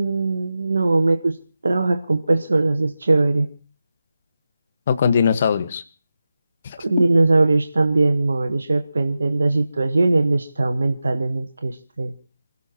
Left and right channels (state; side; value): inverted; both; correlation -0.92